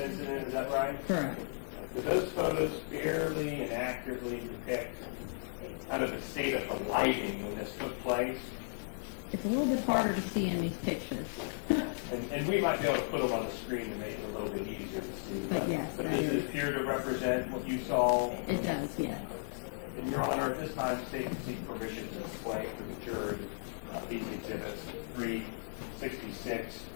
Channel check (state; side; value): silent; right; digital silence